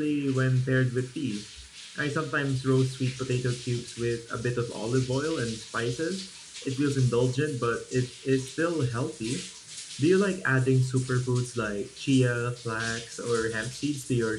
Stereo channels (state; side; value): identical; both; correlation 1.00